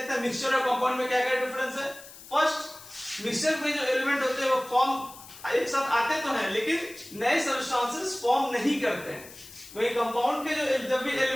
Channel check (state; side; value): noise; left; hiss, 18 dB below the sound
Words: हैं मिक्सचर और कंपाउंड में क्या क्या डिफरेंस है। फर्स्ट, मिक्सचर में जो एलिमेंट होते हैं वो फॉर्म एक साथ आते तो हैं लेकिन नए सब्सटेंसेस फॉर्म नहीं करते हैं। वही कंपाउंड के जो जब भी